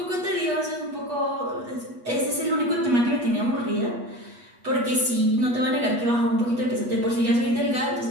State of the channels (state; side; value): late; left; 8.3 ms